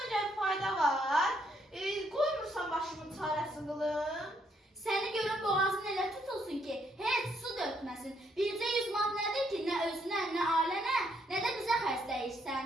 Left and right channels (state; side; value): normal; both; correlation 0.72